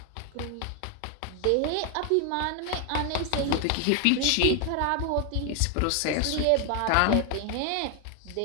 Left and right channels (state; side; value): different; both; correlation 0.00